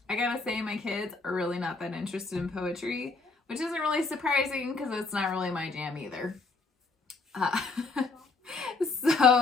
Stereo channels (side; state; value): right; quieter; 3.9 dB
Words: I gotta say my kids are really not that interested in poetry, which isn't really surprising because it's not really my jam either.